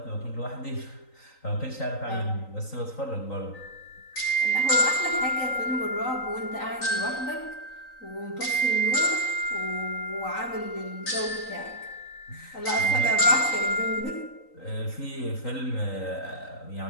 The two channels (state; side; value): late; right; 3.9 ms